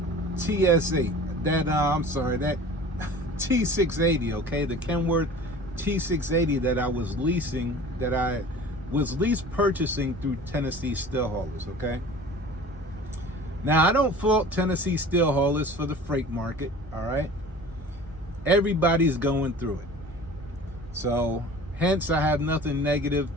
TSH, that T680, okay, the Kenworth T680 that I was leasing, that I was lease purchasing through Tennessee steel haulers, okay? Now, I don't fault Tennessee steel haulers for the freight market, all right? Everybody's going through it. So, hence, I have nothing negative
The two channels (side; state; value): both; normal; correlation 0.41